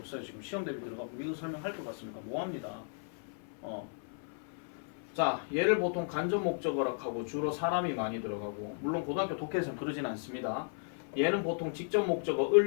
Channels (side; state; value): right; silent; 55 dB below the other